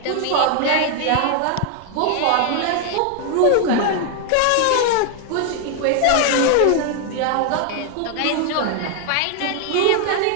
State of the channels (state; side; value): different; both; correlation 0.00